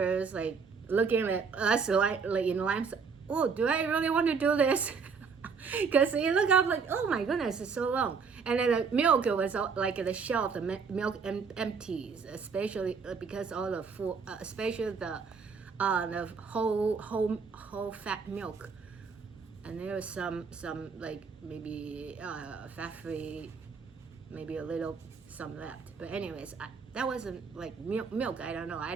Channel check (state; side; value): quieter; left; 5.5 dB